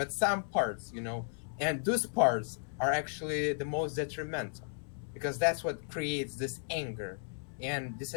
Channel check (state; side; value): silent; right; 55 dB below the other